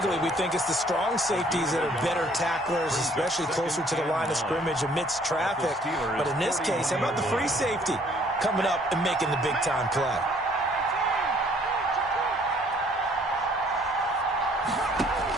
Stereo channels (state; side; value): normal; both; correlation 0.60